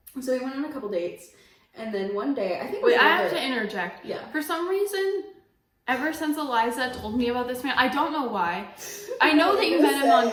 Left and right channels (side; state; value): both; identical; correlation 1.00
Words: So we went on a couple dates. And then one day, I think. Wait, I have to interject. Yeah. For some reason, ever since Eliza told me about this man, I don't know why. I know that you met him on.